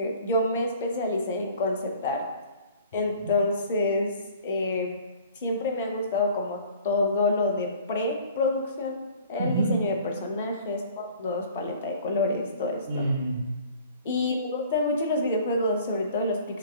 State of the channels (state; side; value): inverted; both; correlation -0.49